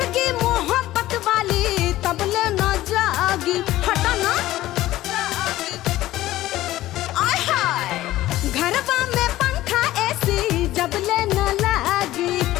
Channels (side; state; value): right; quieter; 15.5 dB